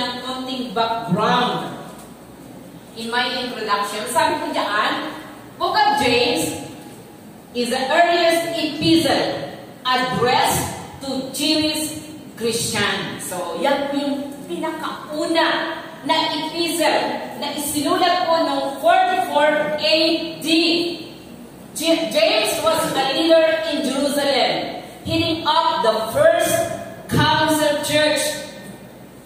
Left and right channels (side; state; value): both; identical; correlation 1.00